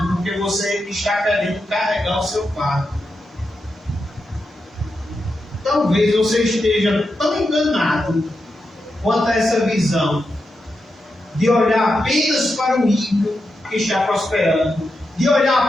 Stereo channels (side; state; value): both; normal; correlation 0.87